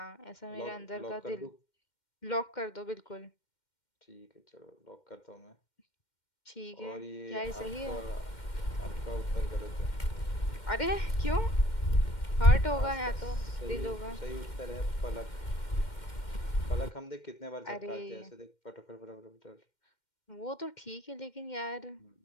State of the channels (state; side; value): late; right; 2.1 ms